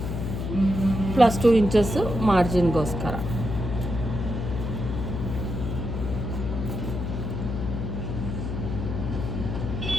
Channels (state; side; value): noise; left; hum, 3 dB below the sound